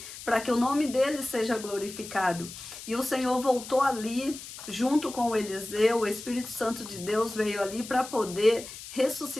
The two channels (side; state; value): left; noise; hiss, 13 dB below the sound